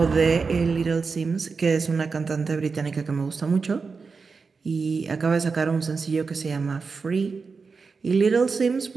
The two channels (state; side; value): quieter; left; 4.8 dB